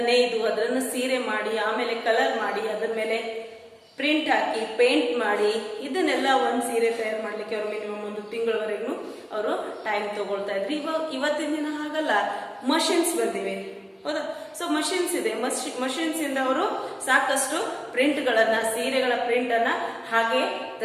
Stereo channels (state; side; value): identical; both; correlation 1.00